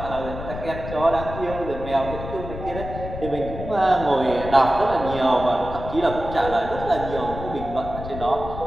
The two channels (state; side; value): noise; left; rumble, 9 dB below the sound